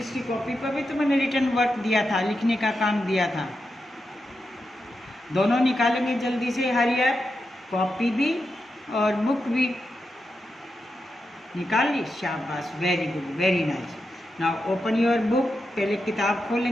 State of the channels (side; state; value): both; normal; correlation 0.88